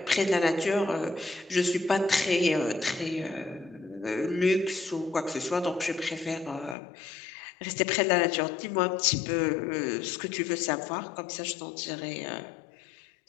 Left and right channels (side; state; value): right; drops out; at 6.8 s